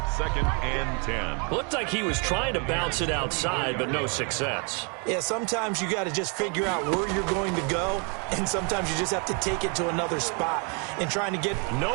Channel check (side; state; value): left; quieter; 35.3 dB